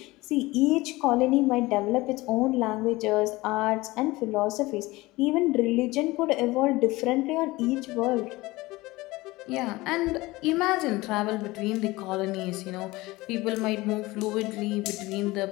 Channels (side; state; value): right; quieter; 20.4 dB